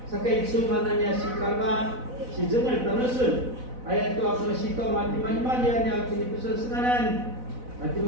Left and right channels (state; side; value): late; left; 4.0 ms